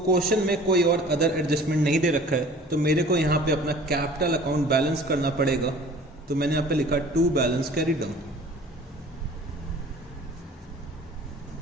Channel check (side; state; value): both; normal; correlation 0.47